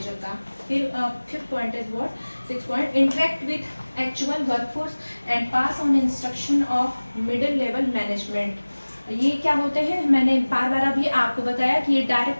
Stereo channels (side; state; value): both; inverted; correlation -1.00